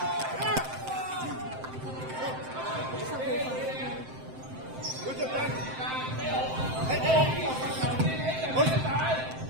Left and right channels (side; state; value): left; late; 7.7 ms